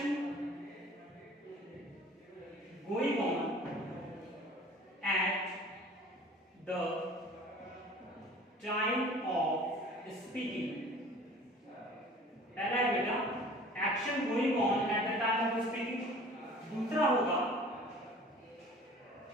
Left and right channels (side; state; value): both; normal; correlation 0.46